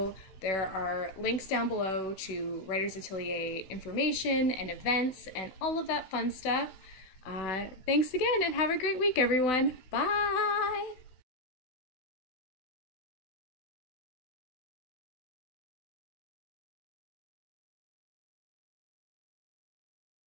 there are links down below to Writers Atelier information and events and all of that fun stuff. Thanks again and have a great week, everyone. Bye!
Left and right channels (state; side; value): late; right; 16 ms